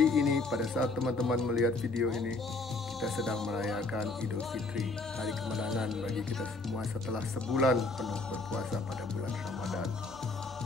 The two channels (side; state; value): right; quieter; 3.2 dB